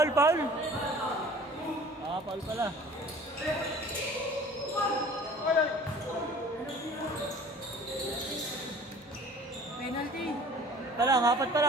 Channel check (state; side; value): normal; both; correlation 0.47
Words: Paul! Paul pala. Penalty. pa lang, apat pa